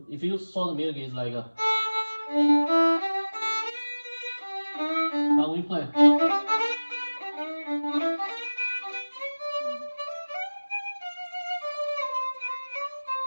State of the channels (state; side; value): inverted; both; correlation -1.00